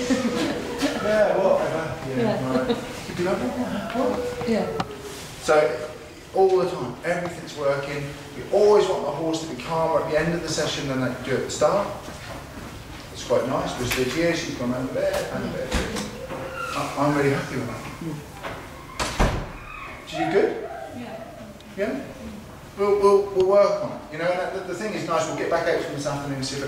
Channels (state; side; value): identical; both; correlation 1.00